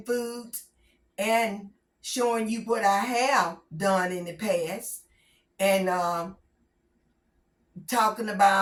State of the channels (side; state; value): both; identical; correlation 1.00